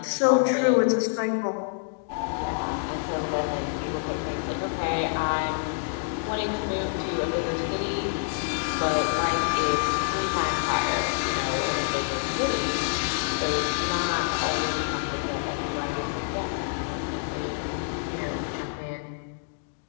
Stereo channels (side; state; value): right; silent; digital silence